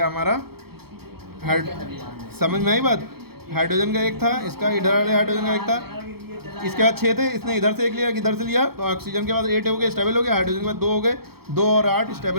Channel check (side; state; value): left; late; 0.96 ms